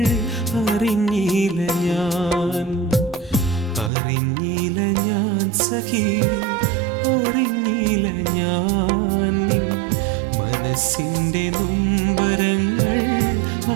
അറിഞ്ഞില്ല ഞാൻ, അറിഞ്ഞില്ല ഞാൻ സഖി, അറിഞ്ഞില്ല ഞാൻ നിൻ മനസ്സിൻ്റെ നൊമ്പരങ്ങൾ,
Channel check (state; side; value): drops out; left; at 3.9 s